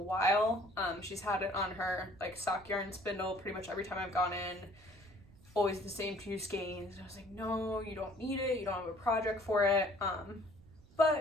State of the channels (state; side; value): noise; right; rumble, 24 dB below the sound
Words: She's had it on her like sock yarn spindle pretty much every time I've gone in, always the same 2 skeins. I was like, no, you don't need it, you don't have a project for it.